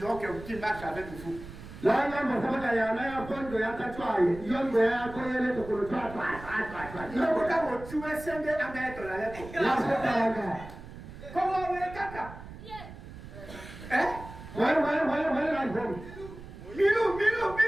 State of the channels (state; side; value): noise; right; rumble, 14 dB below the sound